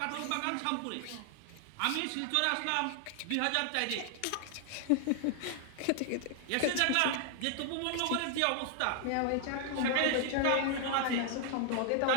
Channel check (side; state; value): both; different; correlation 0.00